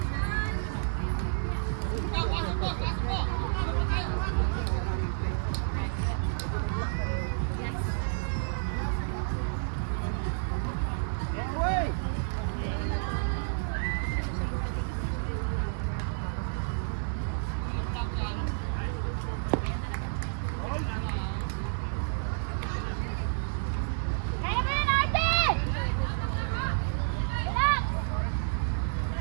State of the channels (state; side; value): silent; left; digital silence